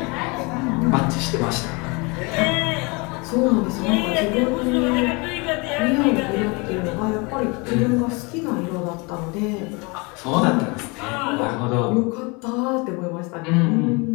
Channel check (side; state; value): right; quieter; 28.5 dB